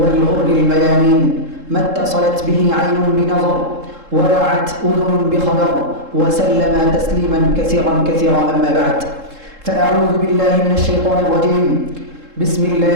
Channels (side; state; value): left; late; 3.7 ms